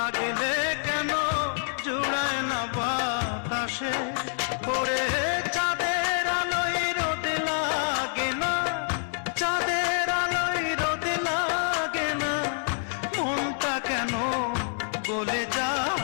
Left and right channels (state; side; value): silent; right; 60 dB below the other